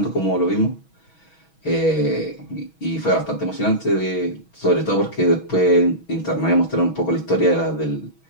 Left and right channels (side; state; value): right; late; 6.2 ms